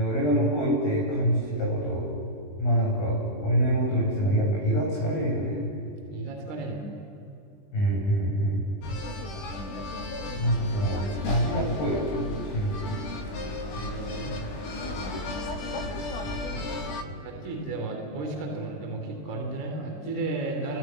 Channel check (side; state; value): right; late; 20 ms